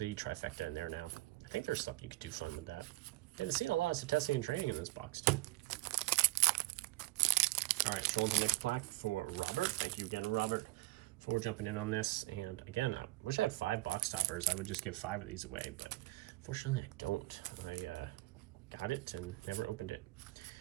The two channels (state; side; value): quieter; left; 20.1 dB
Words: trifecta in there now. I think there's something you could do fun with that. Didn't see a lot of testing and training in this box too. All right, show the next pack for Robert. Thank you again, Robert, for jumping in on this. And again, I wish I had 5 box toppers. I would just give 5 of these away, but fortunately I don't. I got it and never opened it.